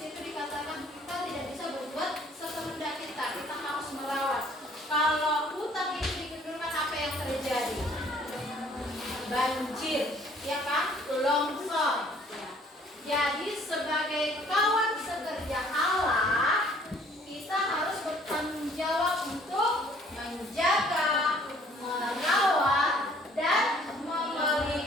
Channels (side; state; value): both; normal; correlation 0.58